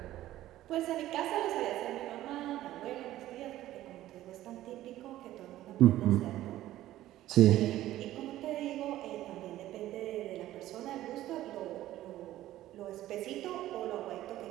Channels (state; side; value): quieter; left; 14.4 dB